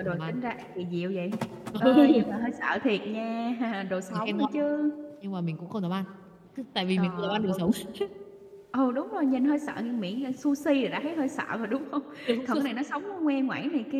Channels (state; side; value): identical; both; correlation 1.00